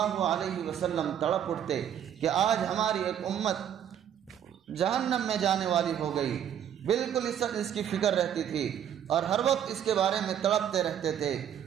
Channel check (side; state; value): left; quieter; 9.6 dB